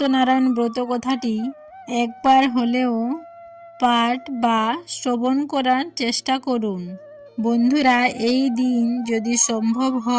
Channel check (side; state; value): both; identical; correlation 1.00